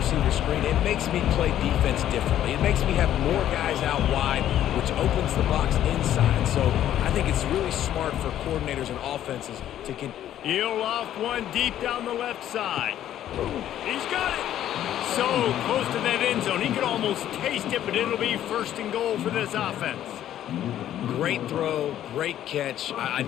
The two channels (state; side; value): quieter; right; 11.6 dB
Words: screen, it makes me play defense differently. It makes me have more guys out wide, which opens the box inside. So I think it's really smart for coordinators and offenses to He'll loft one deep down the left side. He's got it. So close to that end zone. He could almost taste it, but it'll be 1st and goal for this offense. Great throw, great catch. I